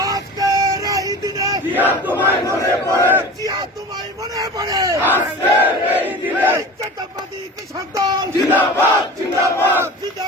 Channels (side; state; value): both; normal; correlation 0.35